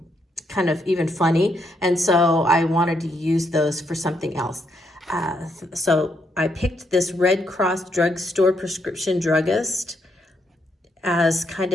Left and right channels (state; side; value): normal; both; correlation 0.76